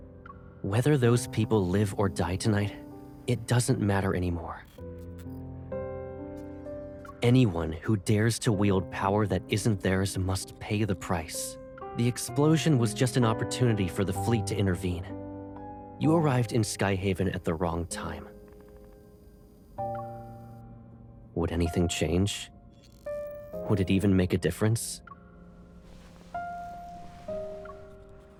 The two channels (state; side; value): identical; both; correlation 1.00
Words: Whether those people live or die tonight, it doesn't matter anymore. Anyone who dares to wield power that isn't theirs must pay the price. The explosion was just an opportunity for the fleet to intervene. You arrived in Skyhaven at the wrong time. Would anything change? Would it even make a difference?